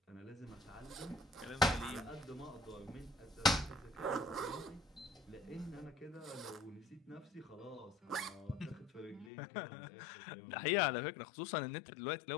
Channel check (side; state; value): right; drops out; at 9.3 s